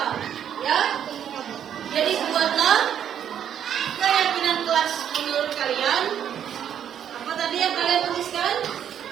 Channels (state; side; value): quieter; left; 9.3 dB